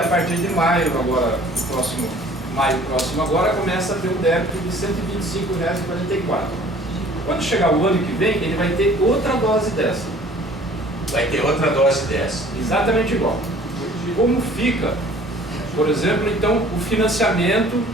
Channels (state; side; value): normal; both; correlation 0.51